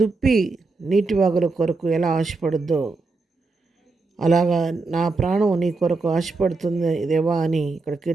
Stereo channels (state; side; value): quieter; left; 3.7 dB